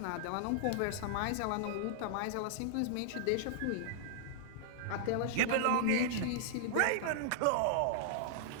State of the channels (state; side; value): different; both; correlation -0.01